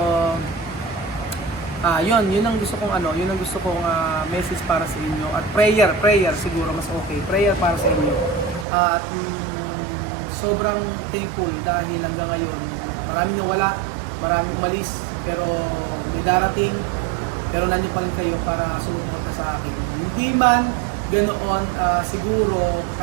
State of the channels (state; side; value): drops out; left; at 8.7 s